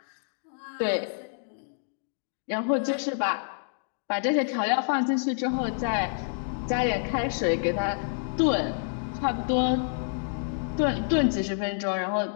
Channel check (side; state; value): right; silent; digital silence